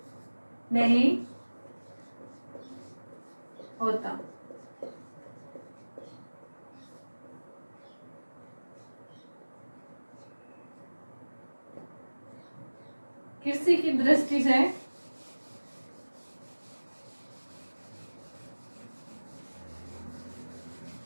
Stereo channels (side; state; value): both; inverted; correlation -1.00